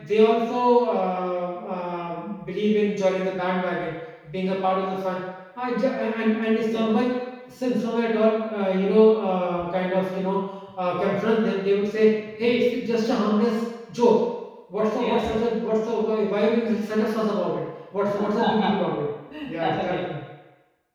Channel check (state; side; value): identical; both; correlation 1.00